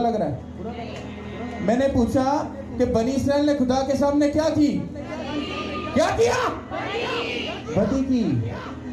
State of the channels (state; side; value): identical; both; correlation 1.00